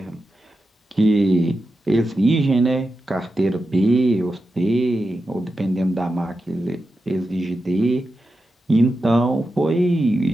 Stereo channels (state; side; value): normal; both; correlation 0.90